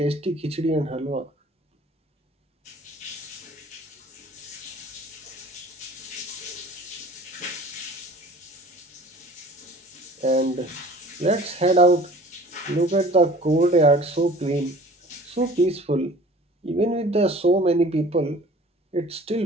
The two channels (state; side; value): normal; both; correlation 0.47